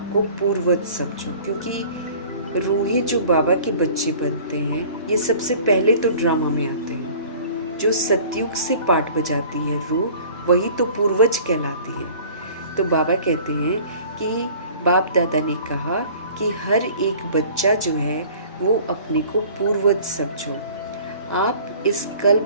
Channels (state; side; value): inverted; both; correlation -0.47